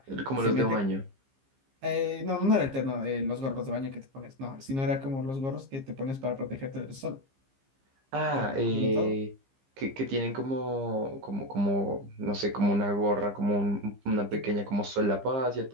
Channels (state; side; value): late; left; 15 ms